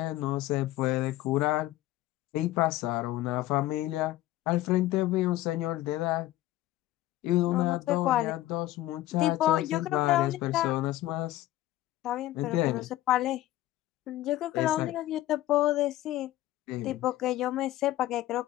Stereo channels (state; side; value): quieter; right; 15.6 dB